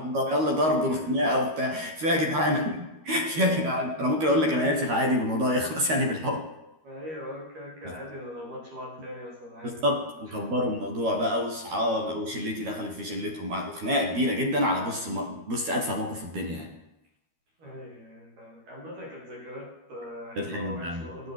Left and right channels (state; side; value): late; left; 13 ms